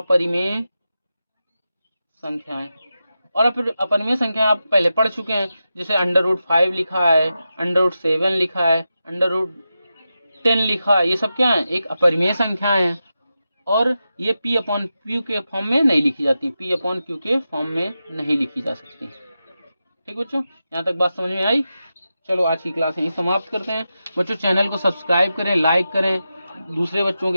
संख्याएं। और अपरिमेय संख्या आप पहले पढ़ चुके हैं, जैसे √5 लिखा है, √7 लिखा है, √10 लिखा है, ये सब क्या है, एक अपरिमेय संख्याएं हैं। और ये P/Q के फॉर्म में नहीं लिखी जाती, P/Q के फॉर्म में नहीं लिखी जा सकती। ठीक बच्चों, यहाँ तक बात समझ में आई। चलो आज की क्लास यहीं समाप्त करते हैं। बच्चों चैनल को सब्सक्राइब करें, लाइक करें, दूसरे बच्चों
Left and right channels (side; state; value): both; inverted; correlation -0.90